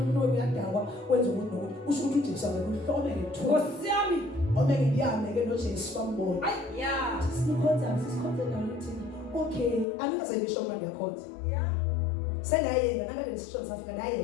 uyadakwa wenza ukuthi nokuthi usho ukuthi uJesu akakuhlome ngethuba Nkosi yami omeke ndiyame ke noJesu bambona yeah sisikhonza naluthi okay angikaze ngisho manje ndiyakhonza yeah senayena nakade nesishoni safika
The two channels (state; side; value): drops out; right; at 9.9 s